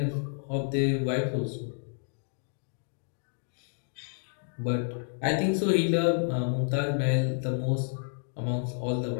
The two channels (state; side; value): silent; right; digital silence